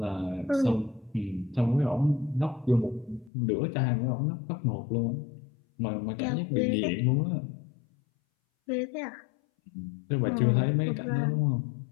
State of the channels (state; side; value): drops out; right; at 3.3 s